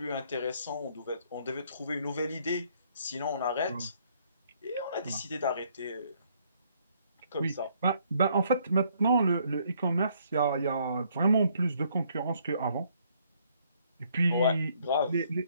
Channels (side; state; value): both; inverted; correlation -0.67